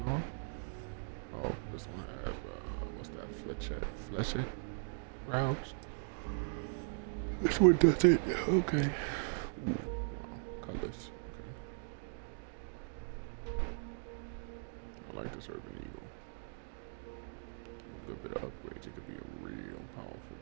Oh, this one has, what's that, fletchet rounds? This one does it. Okay. Ooh, wow, colors. Okay. I like this Urban Eagle. A bit of upgrades, it could be a real powerful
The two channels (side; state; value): left; silent; digital silence